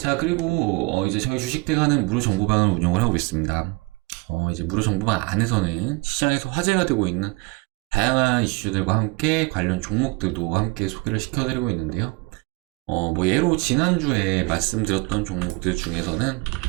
그리고 이제 저희 주식대가는 무료 정보방을 운영을 하고 있습니다. 이제 무료 정보방 안에서는 시장에서 화제가 되고 있는 다양한 이슈들과 함께 관련 종목들도 함께 소개를 시켜드리고 있는데요. 뭐 예로 지난주에 말씀드렸던 종목들 중에서는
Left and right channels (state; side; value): quieter; left; 26.0 dB